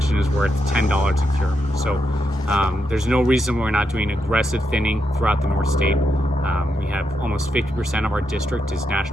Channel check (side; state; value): both; normal; correlation 0.82